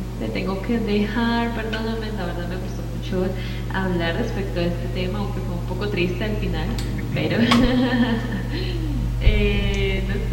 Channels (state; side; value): identical; both; correlation 1.00